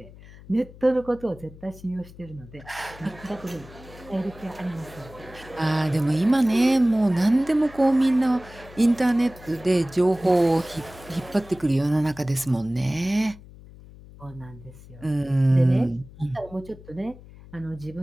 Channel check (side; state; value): left; noise; hum, 20 dB below the sound